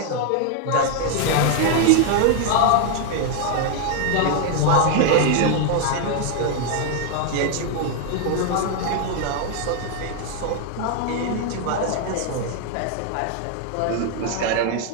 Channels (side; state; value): both; different; correlation 0.00